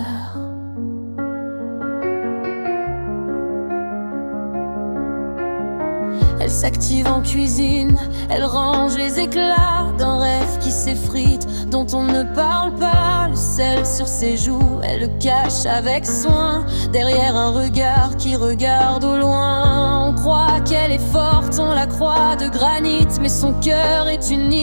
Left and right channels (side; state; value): both; inverted; correlation -1.00